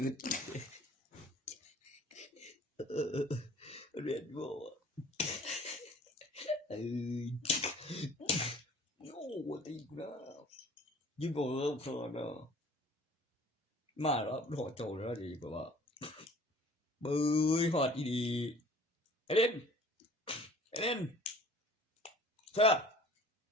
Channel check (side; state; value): both; normal; correlation 0.50